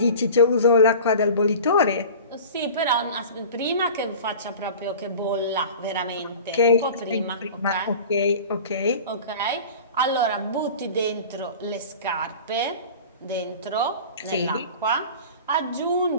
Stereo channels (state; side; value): inverted; both; correlation -0.38